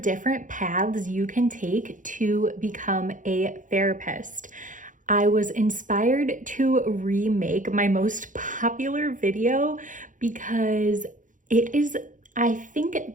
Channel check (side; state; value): left; late; 0.38 ms